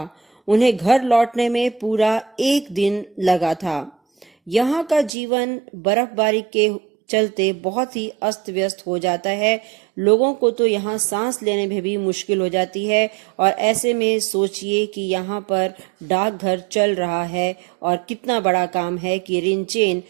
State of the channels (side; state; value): left; drops out; at 5.1 s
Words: उन्हें घर लौटने में पूरा 1 दिन लगा था। यहाँ का जीवन बर्फबारी के चलते बहुत ही अस्त व्यस्त हो जाता है। लोगों को तो यहाँ सांस लेने में भी मुश्किल हो जाती है और ऐसे में सोचिए कि यहाँ पर डाकघर चल रहा है और कितना बड़ा काम है कि रिनचेन